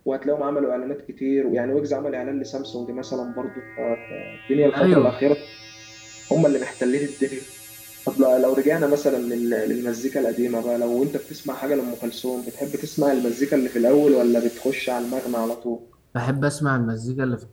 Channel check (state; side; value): identical; both; correlation 1.00